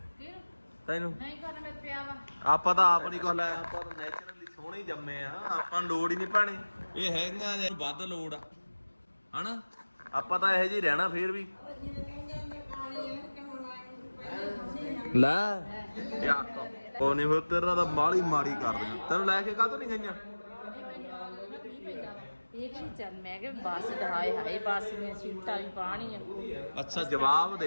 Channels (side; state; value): both; inverted; correlation -1.00